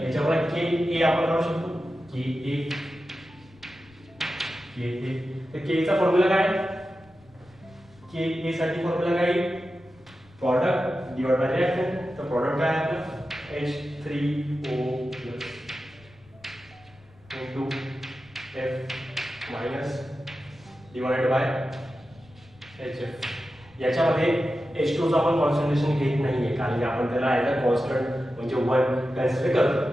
याच्यावर के ए आपण काढू शकतो के ए तर के चा फॉर्म्युला काय के ए साठी फॉर्म्युला काय प्रोडक्ट डिवाइड बाय रिएक्टंट तर प्रोडक्ट काय आहे आपलं H3O plus into F minus divide by HF याच्यामध्ये H2 चा आपण कॉन्सन्ट्रेशन घेत नाहीये कारण की आपण त्याला ॲज अ कॉन्स्टंट म्हणजे 1 कन्सिडर करतो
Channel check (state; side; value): noise; left; rumble, 27 dB below the sound